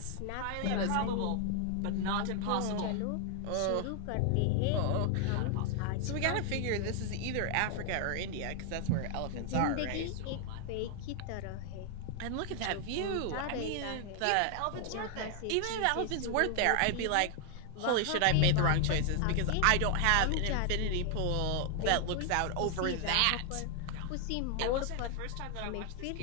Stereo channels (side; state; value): both; different; correlation 0.00